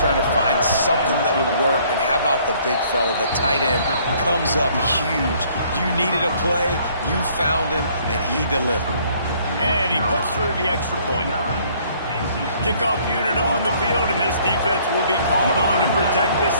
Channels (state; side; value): inverted; both; correlation -0.61